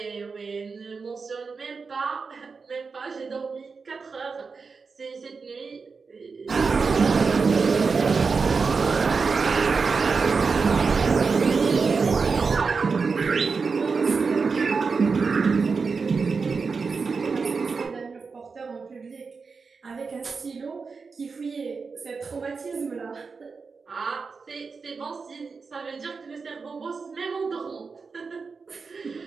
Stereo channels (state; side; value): quieter; left; 4.9 dB